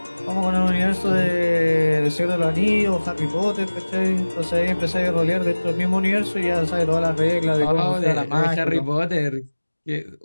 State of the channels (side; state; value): both; inverted; correlation -1.00